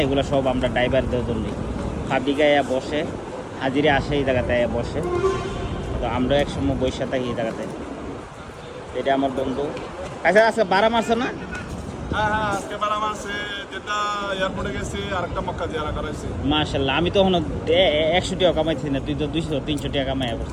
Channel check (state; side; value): identical; both; correlation 1.00